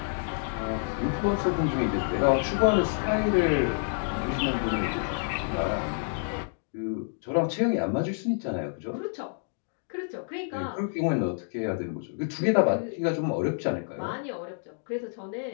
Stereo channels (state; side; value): silent; right; digital silence